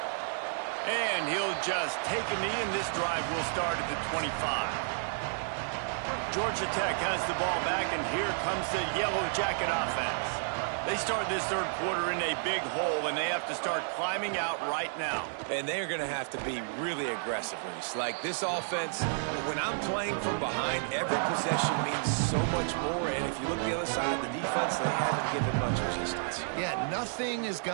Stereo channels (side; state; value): left; silent; digital silence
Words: And he'll just take a knee, and this drive will start at the 25. Georgia Tech has the ball back, and here comes the Yellow Jacket offense. They start this third quarter in a big hole, and they have to start climbing out right now. And they're going to have to be really aggressive, Reese. Like this offense, when I'm playing from behind, every possession means so much more. And if you look the other side, the defense, they haven't given much resistance. Yeah, nothing has